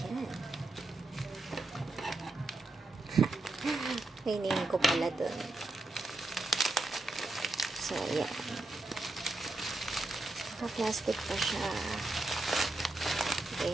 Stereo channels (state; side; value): quieter; left; 3.0 dB